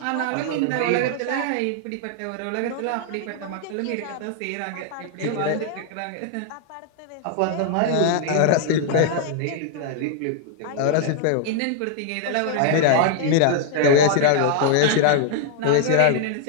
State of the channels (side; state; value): both; different; correlation 0.00